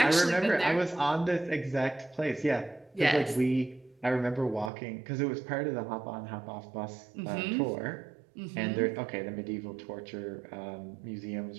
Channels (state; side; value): drops out; left; at 4.7 s